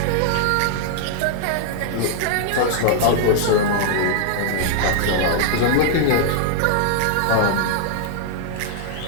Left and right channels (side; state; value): both; different; correlation -0.01